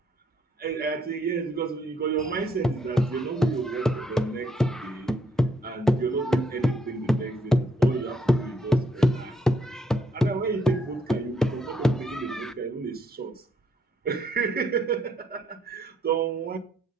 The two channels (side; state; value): both; normal; correlation 0.72